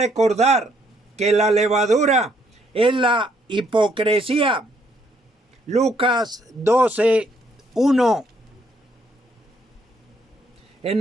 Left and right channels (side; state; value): both; normal; correlation 0.70